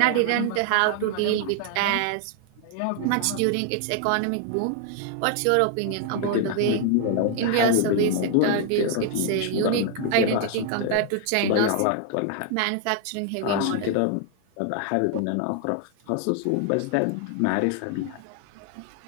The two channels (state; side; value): different; both; correlation 0.00